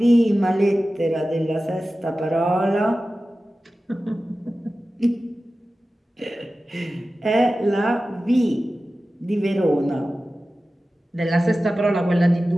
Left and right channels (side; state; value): both; normal; correlation 0.95